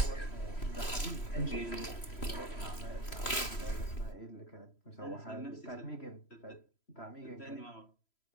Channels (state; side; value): late; right; 3.0 ms